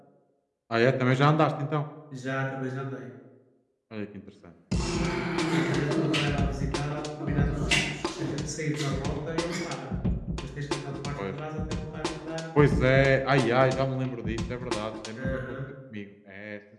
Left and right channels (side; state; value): both; identical; correlation 1.00